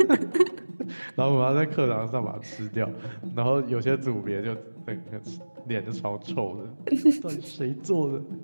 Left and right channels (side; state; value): both; inverted; correlation -1.00